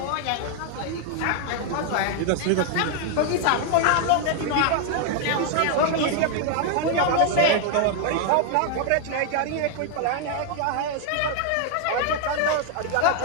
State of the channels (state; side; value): different; both; correlation 0.00